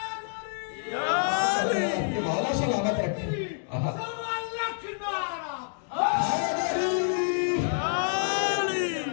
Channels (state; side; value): silent; right; digital silence